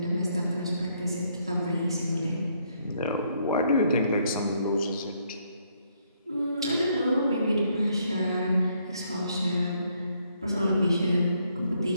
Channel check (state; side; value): inverted; both; correlation -0.72